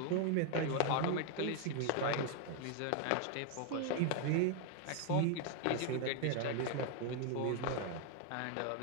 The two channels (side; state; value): both; different; correlation 0.00